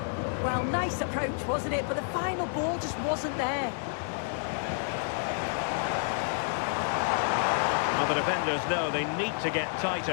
Well, nice approach, wasn't it? But the final ball just wasn't there. Well, the defenders know they need to get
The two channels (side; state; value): right; silent; 58 dB below the other